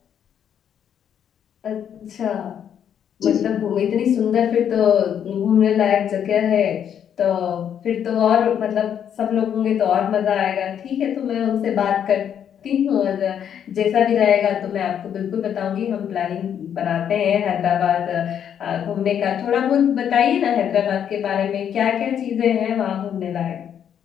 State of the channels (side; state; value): right; quieter; 8.9 dB